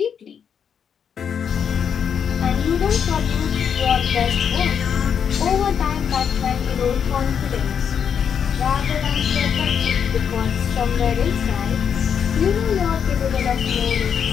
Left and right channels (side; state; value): right; quieter; 7.6 dB